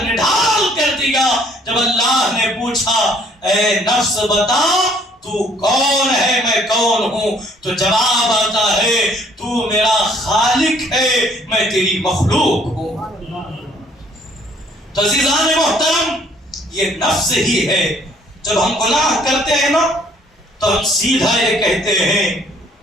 نڈھال کر دیا۔ جب اللہ نے پوچھا، اے نفس بتا تو کون ہے میں کون ہوں؟ تو جواب آتا ہے، تو میرا خالق ہے، میں تیری مخلوق ہوں۔ تو عزیزان محترم، یہ نفس ہی ہے۔ جب ہم گناہ کرتے ہیں نا تو ہم سیدھا یہ کہتے ہیں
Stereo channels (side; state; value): both; normal; correlation 0.60